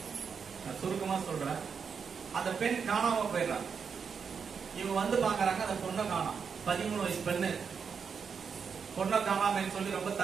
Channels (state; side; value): quieter; left; 6.2 dB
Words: நான் சுருக்கமா சொல்றேன், அந்த பெண் காணாம போயிடுறாங்க. இவங்க வந்து பாக்குறாங்க, அந்த பொண்ணை காணோம். 13 வயசு பெண்ணு பொண்ணை காணாமன்னு சொல்லி ரொம்ப